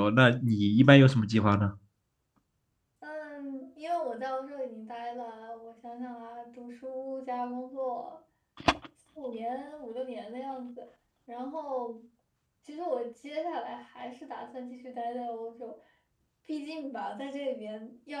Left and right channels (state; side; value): identical; both; correlation 1.00